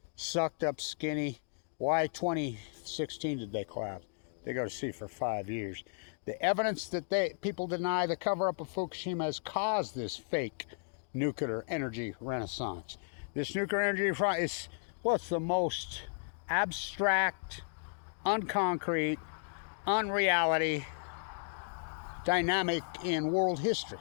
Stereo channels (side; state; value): right; silent; digital silence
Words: sucked up skinny. Why 2016 did they collapse? They go to sea for 5 years. The evidence that people deny the cover-up of Fukushima has caused this fake nuclear energy renaissance. This nuclear energy is, well, it's the most abstract, unconcrete, unreality dynamic in world history.